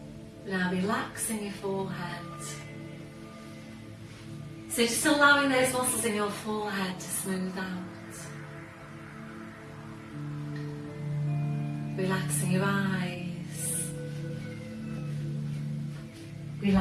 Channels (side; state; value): both; identical; correlation 1.00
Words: Now relaxing your forehead. So just allowing those muscles in your forehead to smooth out. Relaxing your eyes.